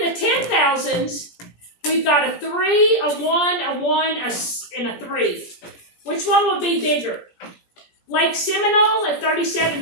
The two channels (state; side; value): late; right; 17 ms